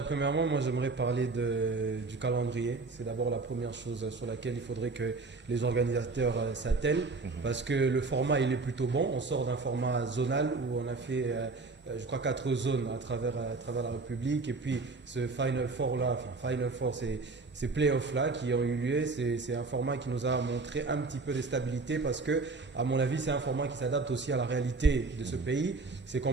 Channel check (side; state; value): left; quieter; 3.8 dB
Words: premièrement, moi j'aimerais parler du calendrier. C'est d'abord la première chose sur laquelle il faudrait que les organisateurs s'attellent parce que le format il est plutôt bon. On sort d'un format zonal où on a fait, je crois, 4 zones à travers la République. Et puis ce Final Four là, Final Four, ces playoffs là qui ont eu lieu, c'est un format qui nous a montré un petit peu de stabilité parce que, à mon avis, c'est un format qui s'adapte aussi à la réalité de ce pays. C'est